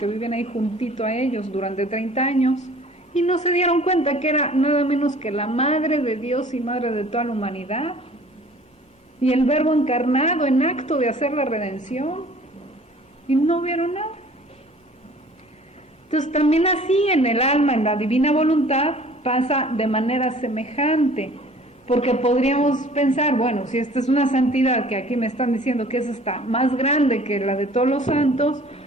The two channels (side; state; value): both; normal; correlation 0.50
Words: viven ahí juntito a ellos durante 30 años, y no se dieron cuenta que era nada menos que la Madre de Dios y Madre de toda la humanidad, y el Verbo encarnado en acto de hacer la redención, y no vieron nada. Entonces también así en el alma, en la divina voluntad, pasa de manera semejante, porque podríamos pensar, bueno, si esta es una santidad que aquí me están diciendo que es esta más grande que la de todos los santos,